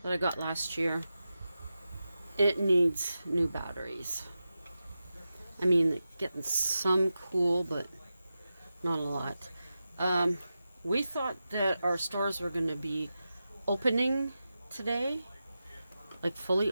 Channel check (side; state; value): both; inverted; correlation -0.91